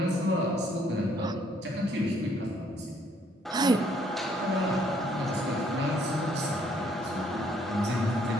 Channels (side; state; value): both; normal; correlation 0.66